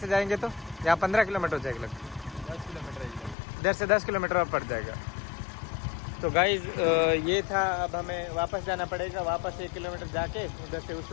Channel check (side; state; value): right; drops out; at 3.4 s